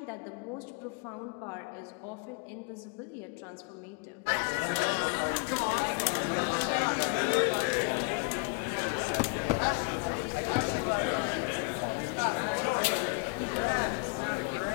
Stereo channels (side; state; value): right; quieter; 32.4 dB